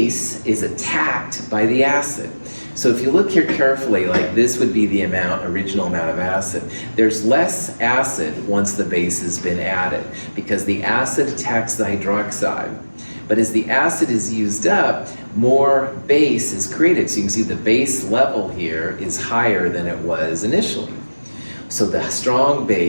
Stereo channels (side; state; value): both; inverted; correlation -1.00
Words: is attacked by the acid. So if you look here carefully, like this would be the original amount of acid. There's less acid once the base has been added because the acid attacks the hydroxide. But as the acid is used up, more base is created. So you can see the base level here is higher than it was initially. So the strong